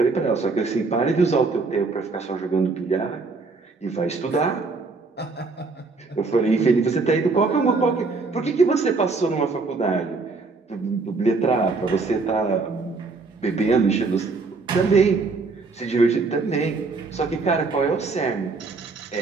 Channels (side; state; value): left; quieter; 4.0 dB